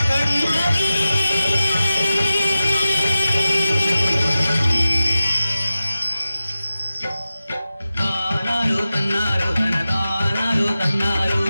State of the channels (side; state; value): both; inverted; correlation -0.94